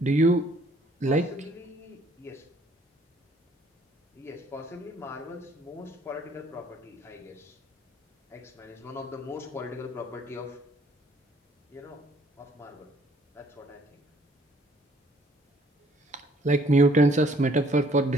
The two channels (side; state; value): both; normal; correlation 0.61